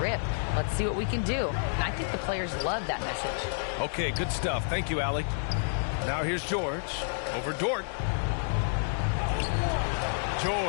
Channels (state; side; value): silent; right; digital silence